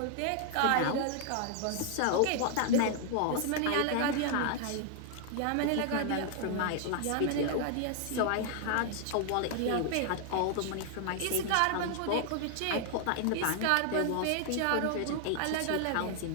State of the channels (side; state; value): both; different; correlation 0.00